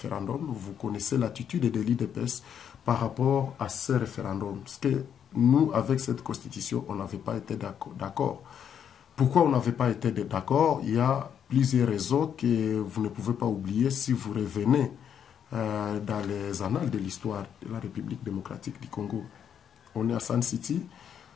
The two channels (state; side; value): quieter; right; 8.5 dB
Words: Vous connaissez l'attitude de l'UDPS par rapport à ce référendum. Parce que nous, avec cette Constitution, on n'avait pas été d'accord. Pourquoi on n'avait pas été d'accord? Il y a plusieurs raisons que vous ne pouvez pas oublier si vous revenez dans les annales de l'histoire de la République démocratique du Congo. On est à Sun City.